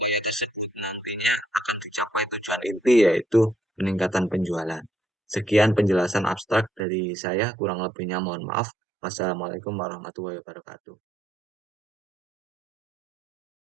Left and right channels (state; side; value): drops out; left; at 6.8 s